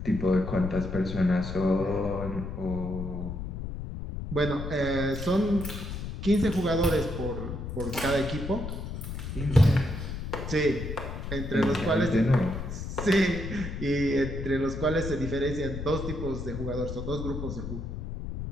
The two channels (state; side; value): noise; left; rumble, 6 dB below the sound